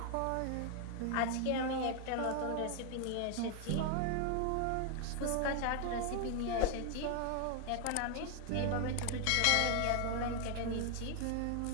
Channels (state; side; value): different; both; correlation 0.01